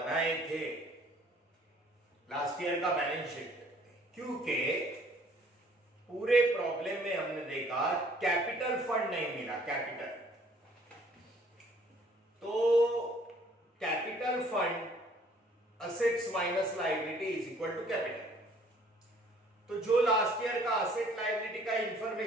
थे लास्ट ईयर का बैलेंस शीट, क्योंकि पूरे प्रॉब्लम में हमने देखा कैपिटल फंड नहीं मिला। कैपिटल तो capital fund assets minus liability is equal to capital. तो जो लास्ट ईयर का असेट लायबिलिटी का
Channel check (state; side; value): normal; both; correlation 0.58